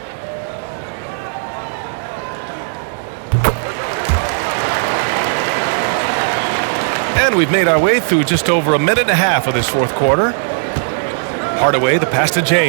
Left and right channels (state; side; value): silent; left; 69 dB below the other